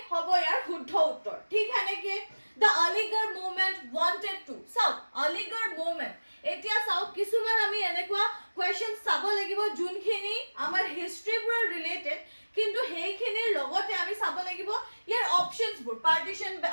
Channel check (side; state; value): both; inverted; correlation -1.00